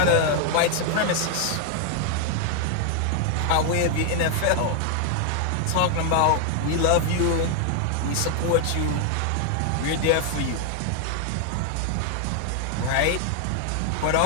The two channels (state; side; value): different; both; correlation 0.01